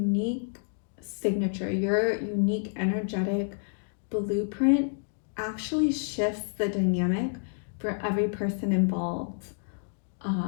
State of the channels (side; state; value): right; silent; digital silence